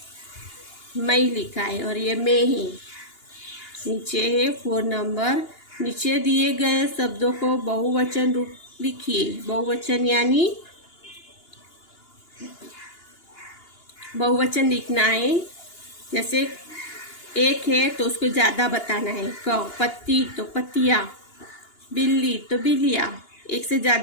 मैं लिखा है और ये मैं है। नीचे है 4 नंबर, नीचे दिए गए शब्दों को बहुवचन रूप लिखिए। बहुवचन यानी बहुवचन लिखना है। जैसे एक है तो उसको ज्यादा बताना है। पत्ती, तो पत्तियां। बिल्ली, तो बिल्लियां। एक से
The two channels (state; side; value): late; right; 2.8 ms